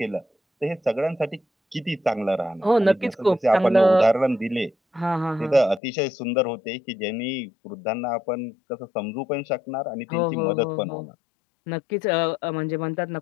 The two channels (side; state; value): right; drops out; at 5.8 s